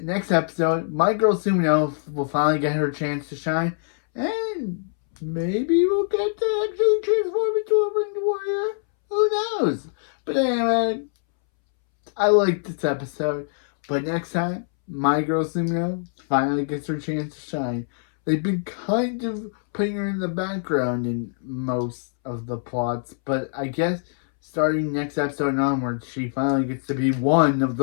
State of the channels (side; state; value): right; silent; 63 dB below the other